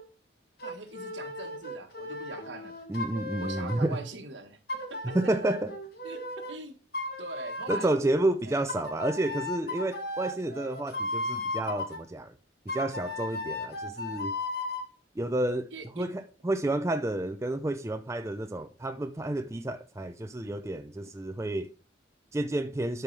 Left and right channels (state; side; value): normal; both; correlation 0.56